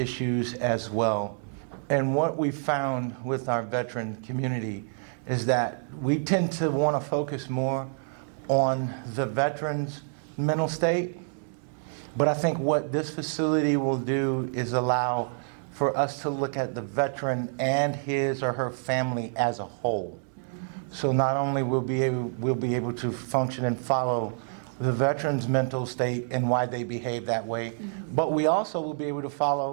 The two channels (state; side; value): silent; left; digital silence